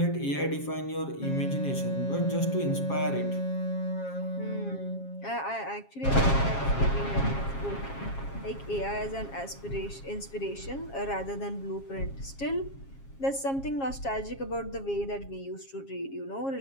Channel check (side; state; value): right; late; 7.4 ms